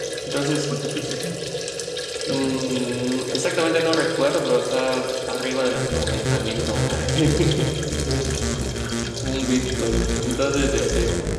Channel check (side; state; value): both; identical; correlation 1.00